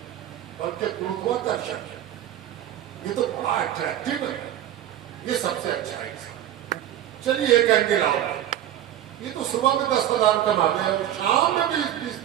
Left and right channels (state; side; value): quieter; left; 11.8 dB